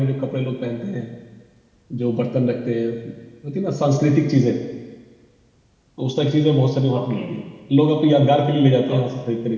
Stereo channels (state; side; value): identical; both; correlation 1.00